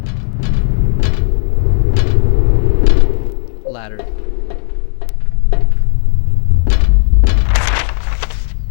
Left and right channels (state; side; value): silent; right; 62 dB below the other